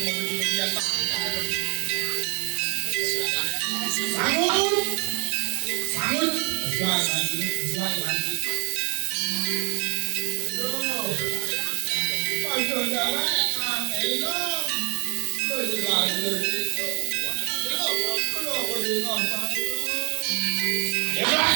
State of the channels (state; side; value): quieter; left; 34.2 dB